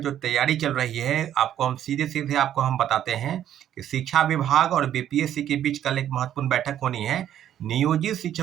तैयारी चल रही है, आपको हम सीधे-सीधे आपको हम बताते हैं कि शिक्षा विभाग और बीपीएससी के बीच कल एक महत्वपूर्ण बैठक होनी है। नियोजित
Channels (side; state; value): left; quieter; 10.9 dB